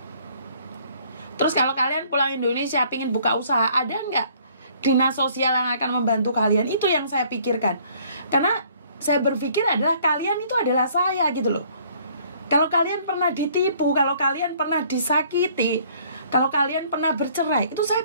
Terus kalau kalian pulang Indonesia, pingin buka usaha, ada nggak dinas sosial yang akan membantu kalian? Itu yang saya pikirkan. Karena saya berpikir adalah kalian itu adalah saya gitu loh. Kalau kalian pernah ditipu, kalau kalian pernah disakiti, kalau kalian pernah bercerai, itu saya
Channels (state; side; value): inverted; both; correlation -0.59